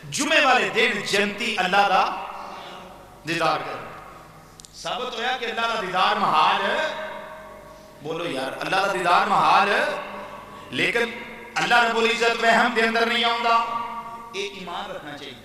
جمعے والے دن جنتی اللہ دا دیدار کر ثابت ہویا کہ اللہ دا دیدار محال ہے. بولو یار اللہ دا دیدار محال ہے لیکن اللہ رب العزت وہم دے اندر نہیں آؤں گا. ایک ایمان رکھنا چاہیے.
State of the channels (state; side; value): identical; both; correlation 1.00